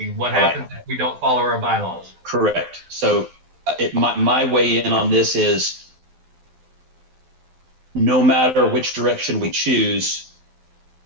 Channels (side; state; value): left; late; 12 ms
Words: What happens if we don't follow our bylaws? Correct. So my weigh in on this is no matter which direction we choose,